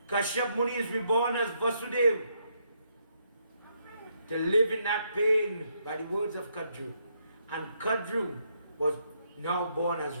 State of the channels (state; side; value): inverted; both; correlation -0.75